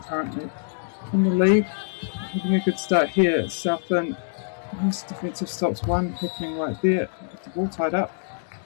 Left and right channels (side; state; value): right; silent; digital silence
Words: currently in the lead. Having a good start here. Southland, nice defensive stops, one happening right there. The ball tied up.